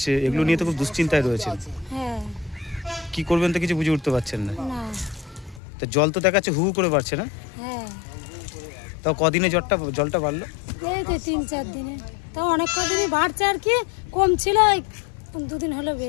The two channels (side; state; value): right; drops out; at 5.6 s